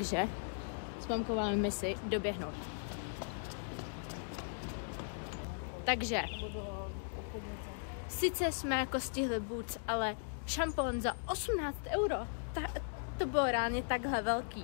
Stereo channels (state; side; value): silent; right; digital silence